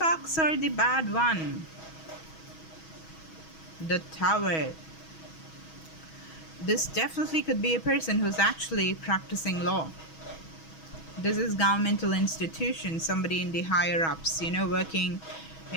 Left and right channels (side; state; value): right; late; 6.2 ms